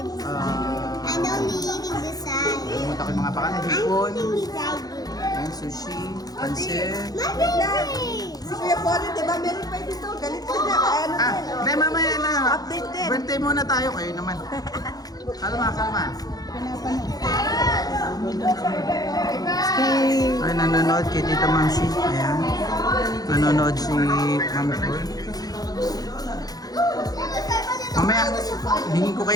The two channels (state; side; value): late; right; 0.18 ms